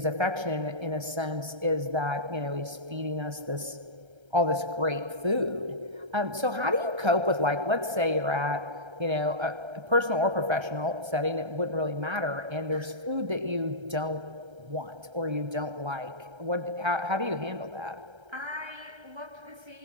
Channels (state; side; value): late; left; 1.3 ms